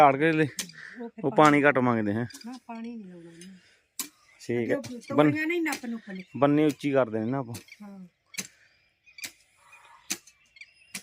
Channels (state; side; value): identical; both; correlation 1.00